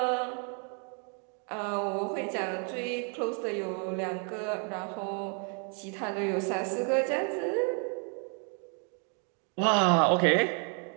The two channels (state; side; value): quieter; left; 39.7 dB